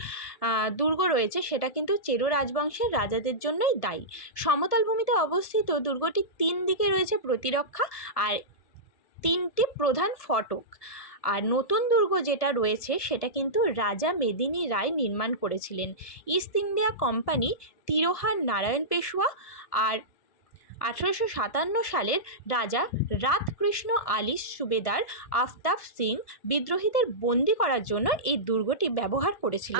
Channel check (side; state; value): right; late; 1.5 ms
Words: দুর্গ রয়েছে সেটা কিন্তু চেরো রাজবংশের রাজাদের জন্যই দায়ী। সমতল ভূমিতে অবস্থিত দুর্গটি 3 দিকে রয়েছে প্রতিরক্ষা আর 3টি প্রধান ফটক। আর নতুন দুর্গ যেটা রয়েছে সেটা কিন্তু রাজা মেদিনী রায় নির্মাণ করেছিলেন। ইস্ট ইন্ডিয়া কোম্পানি তিরোহার নারায়ণ পেশওয়া আর 1857 সালের রাজা রাতকৃষ্ণ আলী সুবেদার আফতাব সিং বিদ্রোহীদের বন্দি করার জন্য এই দুর্গটি ব্যবহার